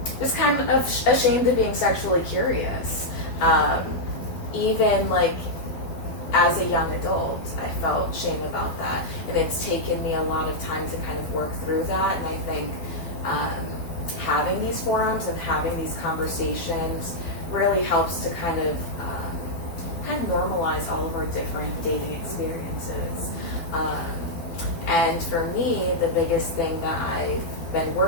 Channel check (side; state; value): right; late; 12 ms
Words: just kind of ashamed of being sexually curious. Even like as a young adult, I felt shame about that, and it's taken me a lot of time to kind of work through that. And I think having these forums and having these conversations really helps to kind of normalize all of our different dating experiences. And for me, the biggest thing that I've been